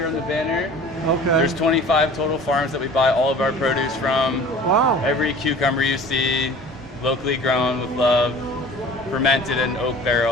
on the banner. Okay. There's 25 total farms that we buy all of our produce from. Wow. Every cucumber you see, locally grown with love, fermented in oak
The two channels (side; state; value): both; normal; correlation 0.44